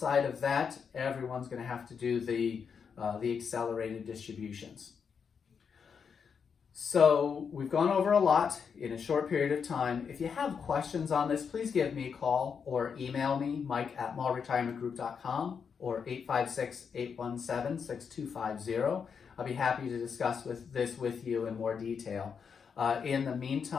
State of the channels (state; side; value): quieter; right; 6.4 dB